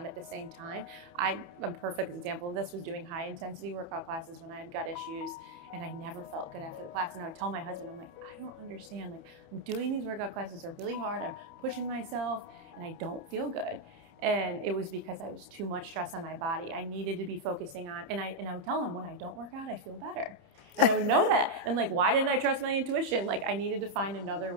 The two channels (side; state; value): left; late; 28 ms